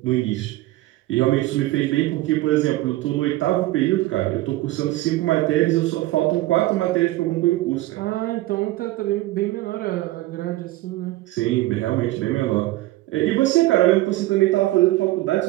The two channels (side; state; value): left; quieter; 17.5 dB